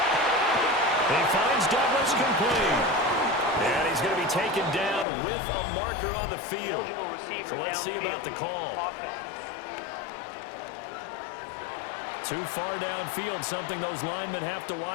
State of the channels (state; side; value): drops out; right; at 5.1 s